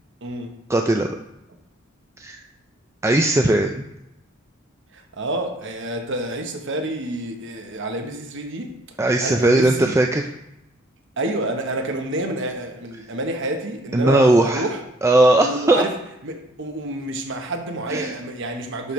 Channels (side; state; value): both; normal; correlation 0.62